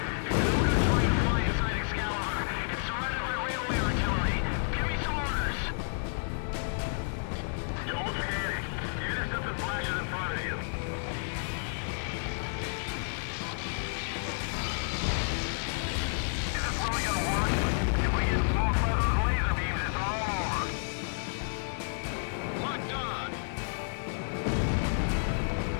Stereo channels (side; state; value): right; silent; digital silence